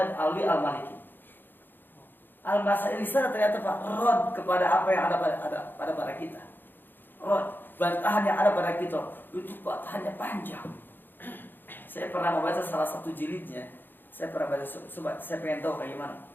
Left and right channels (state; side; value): late; right; 0.094 ms